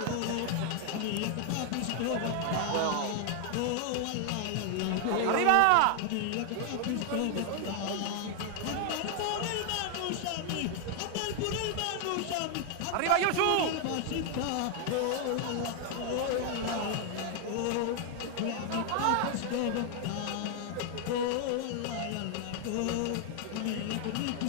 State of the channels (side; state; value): both; different; correlation 0.00